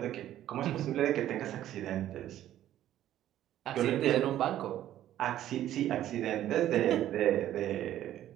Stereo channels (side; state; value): left; quieter; 12.4 dB